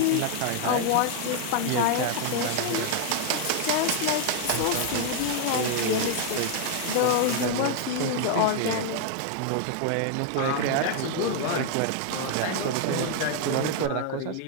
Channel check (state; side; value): different; both; correlation 0.00